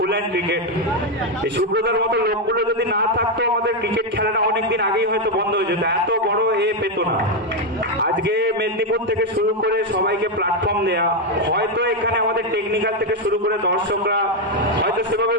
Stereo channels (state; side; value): normal; both; correlation 0.04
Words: hand cricket এই সুব্রতার মতো লোকগুলো যদি না থাকতো আমাদের ক্রিকেট খেলাটা অনেকদিন আগেই হয়তো বন্ধ হয়ে যেত এত বড় পেত না আজকে মেদিনীপুর থেকে শুরু করে সবাইকে প্ল্যাটফর্ম দেয়া হয়তো এখানে আমাদের টেকনিক্যাল থেকে শুরু করে দর্শকরা হয়তো সেভাবে